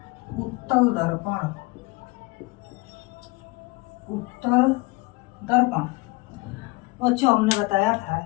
उत्तल दर्पण। उत्तल दर्पण बच्चों, हमने बताया था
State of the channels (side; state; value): right; quieter; 24.5 dB